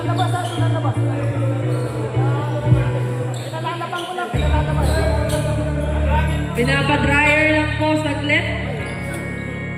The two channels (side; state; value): both; identical; correlation 1.00